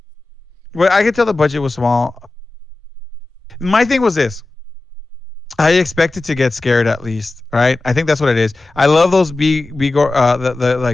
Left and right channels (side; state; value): right; quieter; 3.2 dB